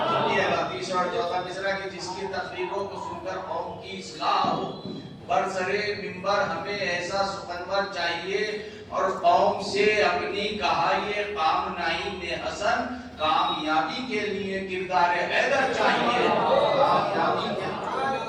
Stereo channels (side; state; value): both; identical; correlation 1.00